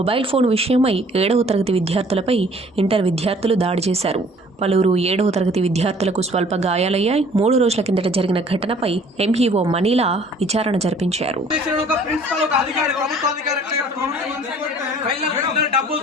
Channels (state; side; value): normal; both; correlation 0.54